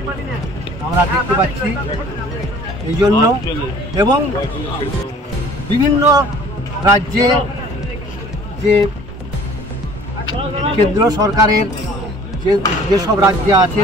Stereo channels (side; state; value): both; normal; correlation 0.51